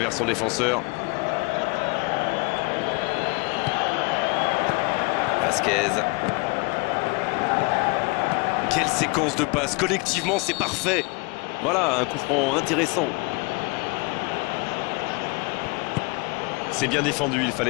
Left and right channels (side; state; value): right; quieter; 28.9 dB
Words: son défenseur. Vasquez. Quelle séquence de passes. Collectivement, c'est parfait. Voilà, un coup franc intéressant. C'est bien défendu, il